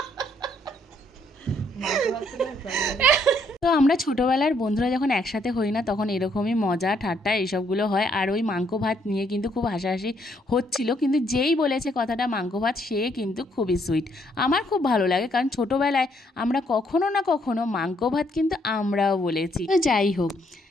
তো আমরা ছোটোবেলার বন্ধুরা যখন একসাথে হই না, তখন এরকমই মজা ঠাট্টা এইসবগুলো হয়। আর ওই মাংস ভাত নিয়ে কিন্তু খুব হাসাহাসি হচ্ছিল, কিন্তু যেই বলেছে কথাটা মাংস ভাত, সে কিন্তু খুবই সুইট। আমার খুব ভালো লাগে, কারণ ছোটোবেলায় আমরা কখনো না কখনো মাংস ভাত কিন্তু আমরাও বলেছি। তো যাই হোক,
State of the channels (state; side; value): normal; both; correlation 0.70